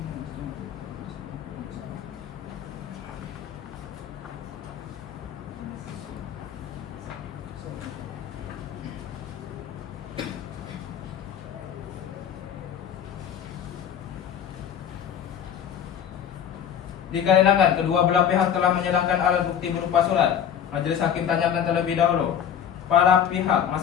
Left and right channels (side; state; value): right; quieter; 8.7 dB